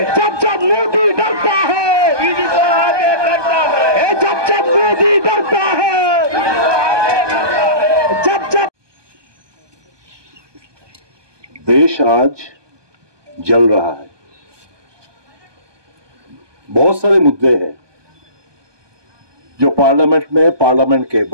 जब मोदी डरता है, जब मोदी डरता है, जब देश आज जल रहा है। बहुत सारे मुद्दे हैं जो पार्लियामेंट में, पार्लियामेंट के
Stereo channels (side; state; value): left; late; 1.2 ms